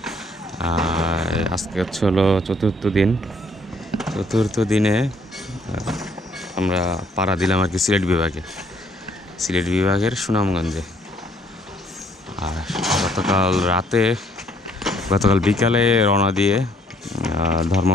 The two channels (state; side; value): normal; both; correlation 0.65